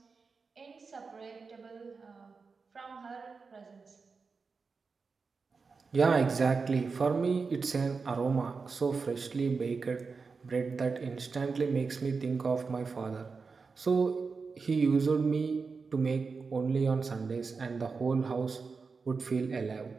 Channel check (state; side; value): quieter; left; 4.8 dB